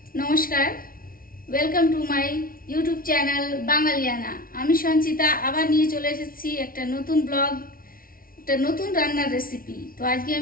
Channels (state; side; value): late; right; 0.42 ms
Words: নমস্কার, welcome to my YouTube channel Bangaliana. আমি সঞ্চিতা আবার নিয়ে চলে এসেছি একটা নতুন ব্লগ, একটা নতুন রান্নার রেসিপি। তো আজকে